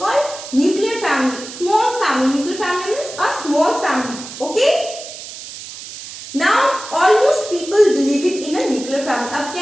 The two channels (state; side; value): noise; right; hiss, 12 dB below the sound